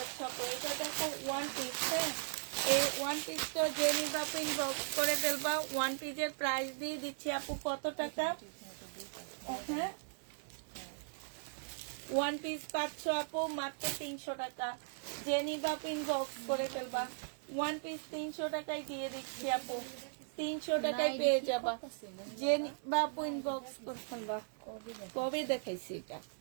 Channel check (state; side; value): silent; left; digital silence